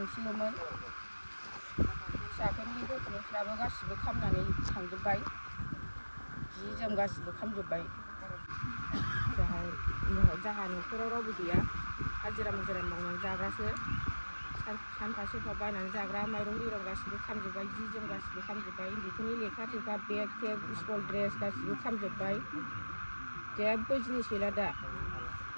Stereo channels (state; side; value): inverted; both; correlation -1.00